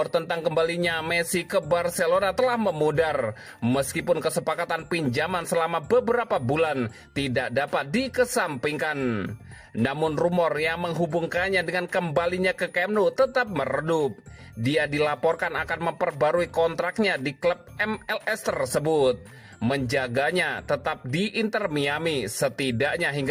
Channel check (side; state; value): both; identical; correlation 1.00